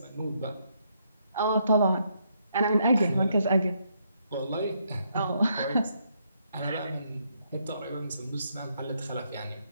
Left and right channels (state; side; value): inverted; both; correlation -0.75